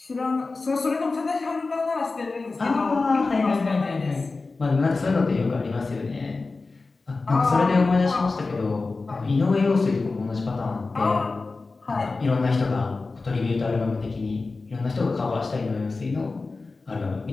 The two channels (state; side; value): quieter; right; 3.8 dB